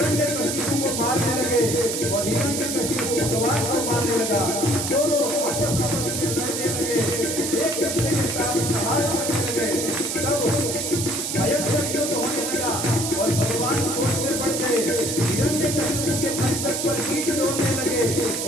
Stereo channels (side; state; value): right; noise; hiss, 3 dB below the sound